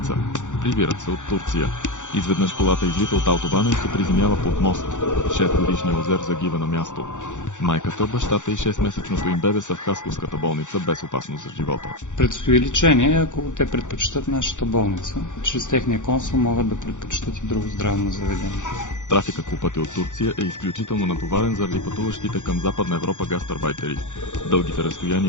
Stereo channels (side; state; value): right; late; 0.85 ms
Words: Прибират се от Турция. Изведнъж колата излита от автобана и се приземява под мост. 6-годишният Озер загива на място. Майката, бащата и 6-месечното им бебе са в Хасковската болница без опасност за живота. Предстои лечение, ако те предпочитат нашата болница. Чрез техния консул могат да предпочитат и друго здравно заведение. Трафикът по пътя от Турция е изключително натоварен заради пътуващите към Западна Европа гастарбайтери. Дългите